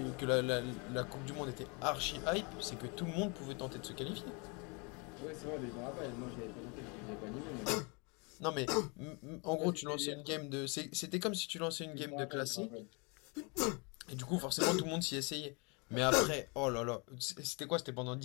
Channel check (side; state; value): right; quieter; 31.5 dB